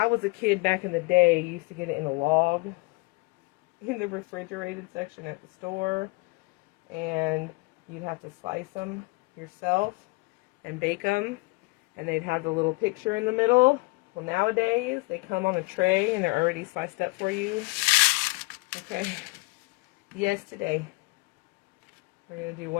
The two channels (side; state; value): right; quieter; 26.0 dB